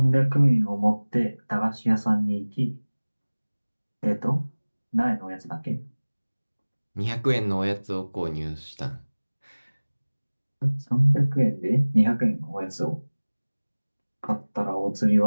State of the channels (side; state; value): both; inverted; correlation -1.00